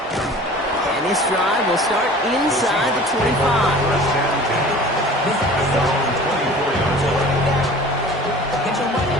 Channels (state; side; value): normal; both; correlation 0.43